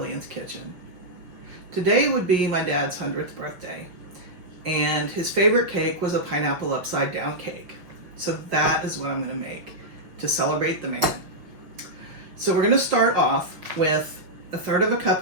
Kitchen. Today would be my dad's 100th birthday, and his favorite cake was a pineapple upside down cake. So that is what I'm going to make to celebrate the man. So we're going to start off with 1/3 cup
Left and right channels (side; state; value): left; late; 5.8 ms